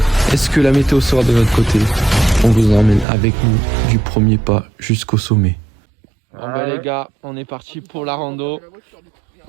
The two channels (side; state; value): left; drops out; at 3.1 s